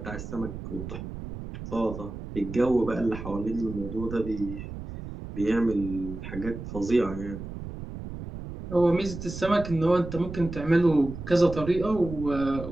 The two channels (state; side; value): noise; right; rumble, 9 dB below the sound